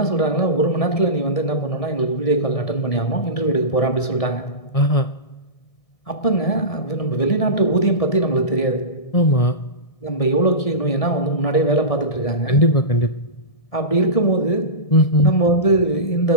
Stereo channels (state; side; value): late; right; 1.7 ms